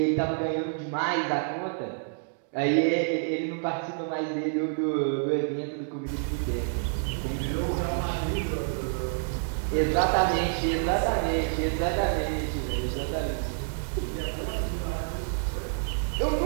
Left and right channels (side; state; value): left; silent; digital silence